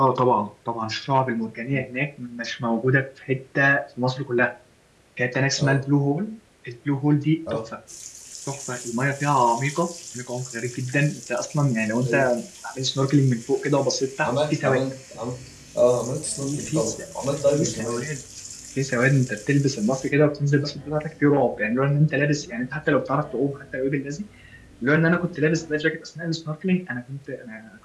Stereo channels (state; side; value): identical; both; correlation 1.00